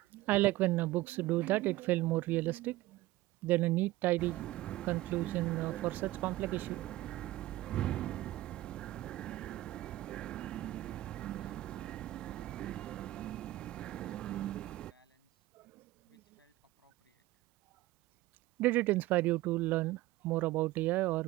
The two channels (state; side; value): quieter; left; 17.3 dB